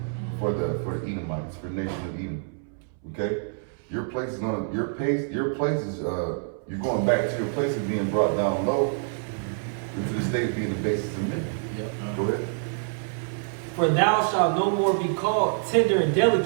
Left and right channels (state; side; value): silent; left; 61 dB below the other